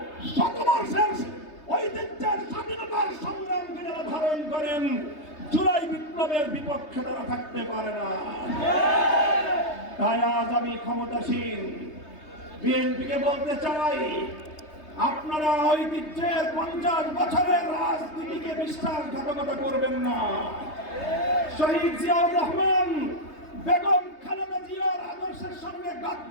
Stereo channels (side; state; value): right; late; 3.3 ms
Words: শতবর্ষের ঐতিহ্যের স্বাধীনতার সংগ্রামকে যারা ধারণ করেন, জুলাই বিপ্লবের বিপক্ষে তারা থাকতে পারে না। তাই আজ আমি ক্ষমতাসীন বিএনপিকে বলতে চাই, আপনারা ঐতিহ্যের 50 বছরের রাজনীতিকে বিশ্বাসঘাতকতা করবেন না। শহীদ জিয়াউর রহমান, বেগম খালেদা জিয়ার আদর্শের সঙ্গে